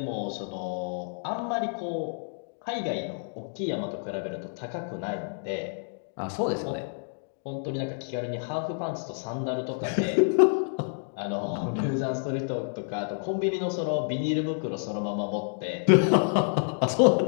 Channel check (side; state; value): right; silent; digital silence